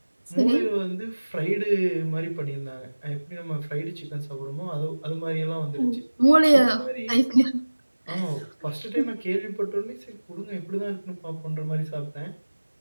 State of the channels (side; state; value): both; inverted; correlation -1.00